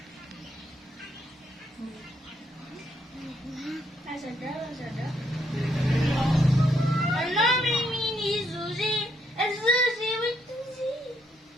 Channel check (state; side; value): normal; both; correlation 0.74